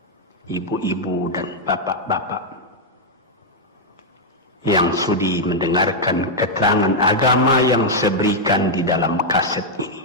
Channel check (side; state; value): both; normal; correlation -0.02